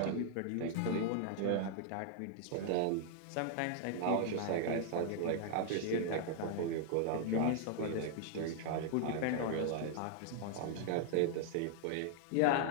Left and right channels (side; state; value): both; different; correlation -0.01